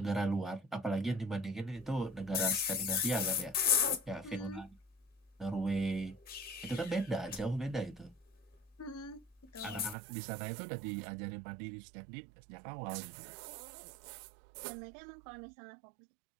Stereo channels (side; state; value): left; drops out; at 10.0 s